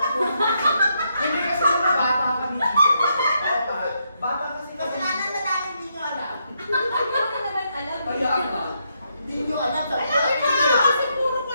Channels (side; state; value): both; inverted; correlation -0.78